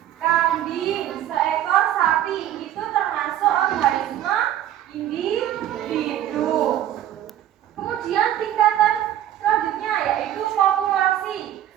kambing, seekor sapi. Itu termasuk organisme individu. Kemudian tingkatan selanjutnya yaitu populasi.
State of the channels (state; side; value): quieter; left; 11.8 dB